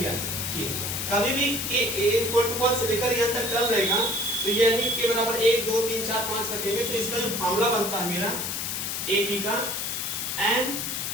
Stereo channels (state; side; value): noise; left; hiss, 2 dB below the sound